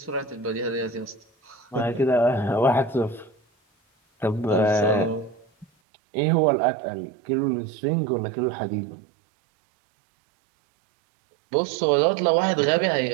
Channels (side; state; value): left; drops out; at 5.7 s